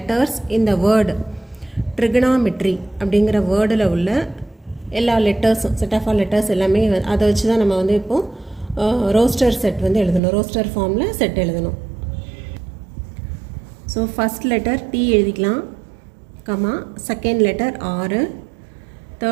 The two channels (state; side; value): drops out; left; at 10.2 s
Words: இந்த வேர்டு ட்ரிகனாமெட்ரி அப்படிங்கிற வேர்டில் உள்ள எல்லா லெட்டர்ஸும், செட் ஆஃப் ஆல் லெட்டர்ஸ் எல்லாமே அதை வச்சு தான் நம்ம வந்து இப்போது ரோஸ்டர் செட் வந்து எழுதணும், ரோஸ்டர் ஃபார்மில் செட் எழுதணும். ஸோ ஃபஸ்ட் லெட்டர் T எழுதிக்கலாம், comma second letter R,